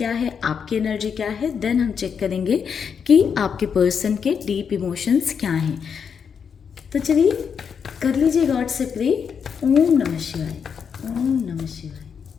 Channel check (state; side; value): quieter; right; 6.8 dB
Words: है, आपकी एनर्जी क्या है, देन हम चेक करेंगे कि आपके पर्सन के डीप इमोशंस क्या हैं। तो चलिए कर लीजिए गॉड से प्रे। ओम नमः शिवाय, ओम नमः शिवाय,